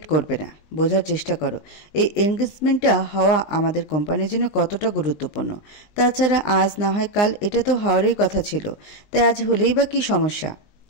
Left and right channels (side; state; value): right; late; 19 ms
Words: করবে না। বোঝার চেষ্টা করো এই এনগেজমেন্টটা হওয়া আমাদের কোম্পানির জন্য কতটা গুরুত্বপূর্ণ। তাছাড়া আজ না হয় কাল এটা তো হওয়ারই কথা ছিল, তাই আজ হলেই বা কী সমস্যা?